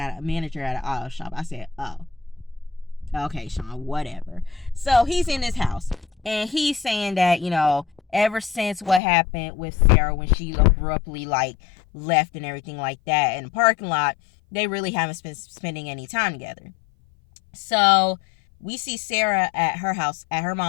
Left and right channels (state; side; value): drops out; right; at 9.0 s